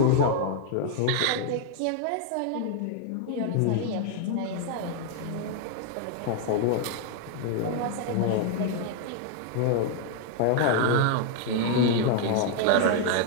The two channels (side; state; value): both; different; correlation 0.00